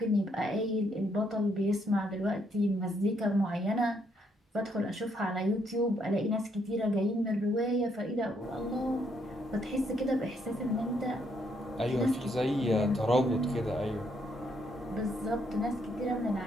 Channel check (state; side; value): normal; both; correlation 0.73